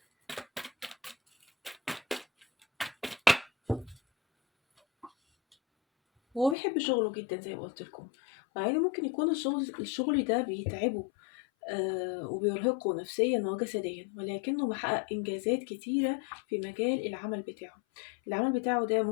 هو بيحب شغله جدا زي ما قلت لكم، مع انه ممكن يكون الشغل ده بيتعبه وبيرهقه نفسيا وجسديا، ولكنه محقق إنجازات كتيرة في مجال العمل بتاعه. العمل بتاعه ده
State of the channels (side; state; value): right; drops out; at 6.6 s